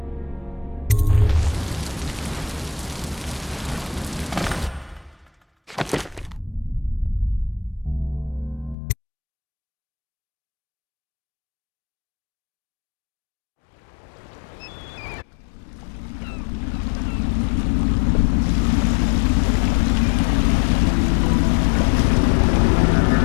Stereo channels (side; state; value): right; drops out; at 8.8 s